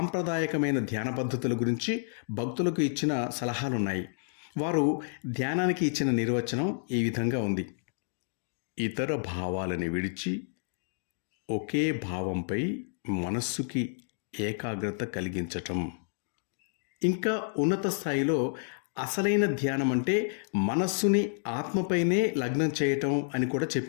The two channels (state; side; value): silent; right; digital silence